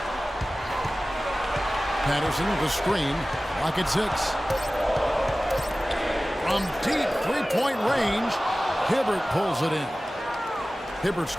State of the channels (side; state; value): both; normal; correlation 0.97